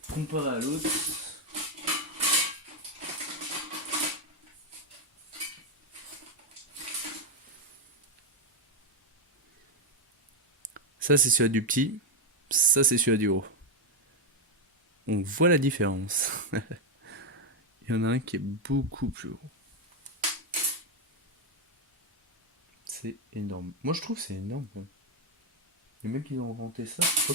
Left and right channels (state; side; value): normal; both; correlation 0.03